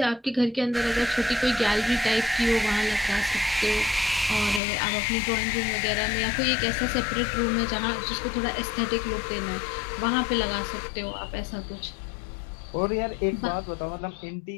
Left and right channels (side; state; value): right; drops out; at 4.6 s